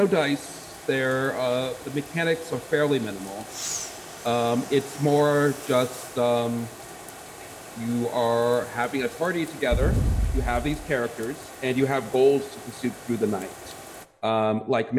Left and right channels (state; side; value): identical; both; correlation 1.00